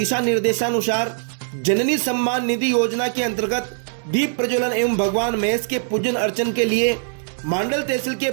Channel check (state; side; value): silent; left; digital silence